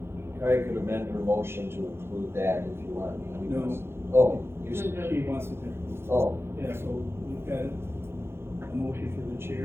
I could amend her motion to include that if you want. No. Oh, you, She wants it to, oh, yeah, so we've got a motion for the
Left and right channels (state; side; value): late; left; 0.12 ms